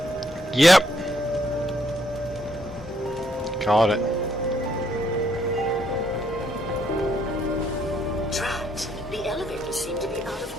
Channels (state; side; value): normal; both; correlation 0.71